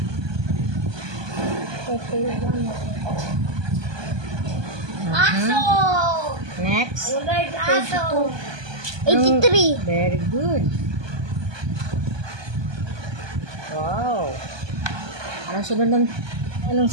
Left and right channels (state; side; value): late; left; 1.2 ms